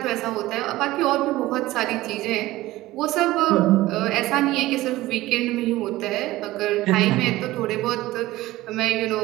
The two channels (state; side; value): quieter; left; 17.4 dB